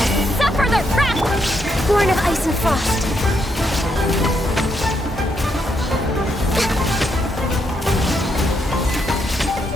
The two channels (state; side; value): normal; both; correlation 0.78